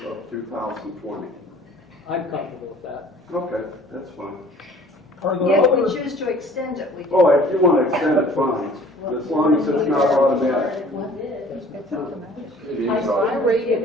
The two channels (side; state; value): both; normal; correlation 0.51